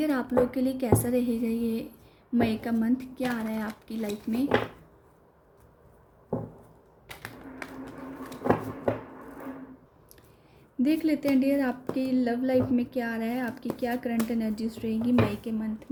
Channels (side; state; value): both; identical; correlation 1.00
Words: आप लोग के लिए कैसा रहेगा ये मई का मंथ। क्या आ रहा है आपकी लाइफ में। देख लेते हैं डियर आपकी लव लाइफ में क्या आ रहा है, आपकी क्या करंट एनर्जीज रहेगी मई के मंथ